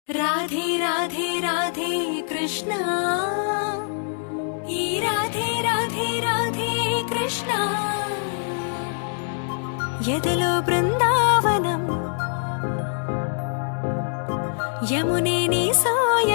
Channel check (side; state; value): right; silent; digital silence